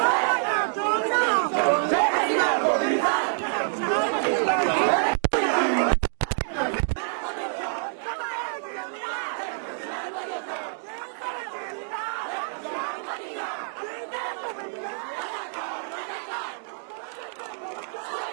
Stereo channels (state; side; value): silent; left; digital silence